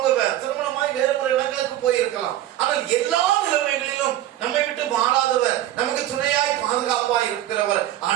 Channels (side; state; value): left; quieter; 13.3 dB